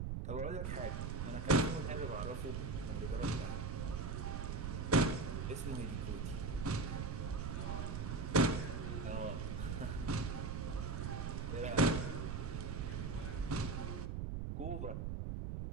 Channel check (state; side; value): noise; right; rumble, 2 dB below the sound